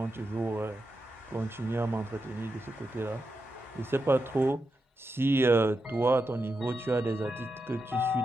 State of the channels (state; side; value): normal; both; correlation 0.87